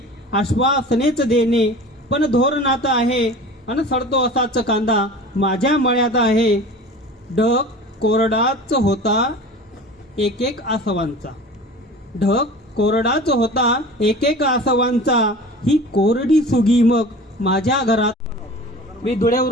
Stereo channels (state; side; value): normal; both; correlation 0.38